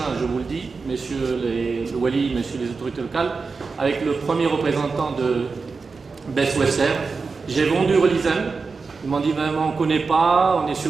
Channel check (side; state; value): left; quieter; 4.5 dB